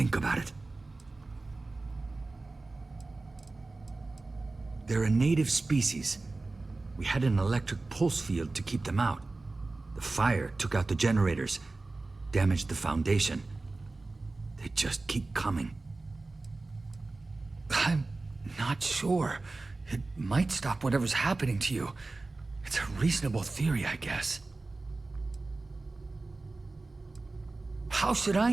about it. They're a native species. We had an electric pulse field to keep them out. The fire took out the generators, damaged the foundation. They just keep coming. I'm not sure. It might stop whatever's happening to you. It's a reasonable theory, I guess. How should I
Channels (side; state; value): left; quieter; 3.3 dB